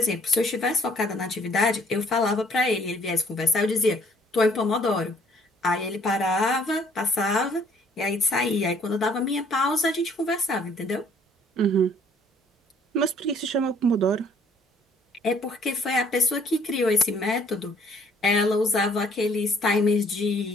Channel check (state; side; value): normal; both; correlation 0.60